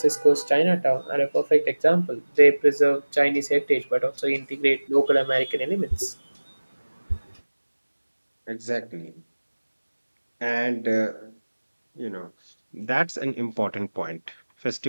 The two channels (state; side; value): inverted; both; correlation -1.00